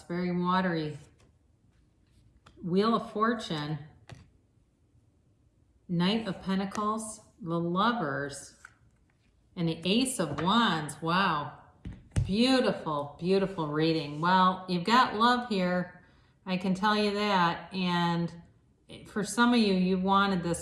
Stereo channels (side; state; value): both; identical; correlation 1.00